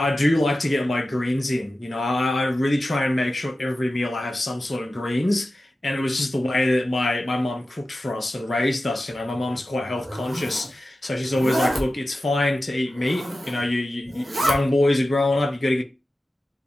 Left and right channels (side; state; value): both; normal; correlation 0.94